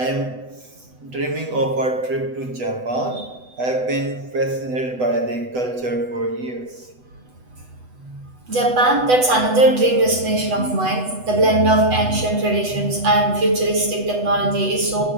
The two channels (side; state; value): left; late; 8.0 ms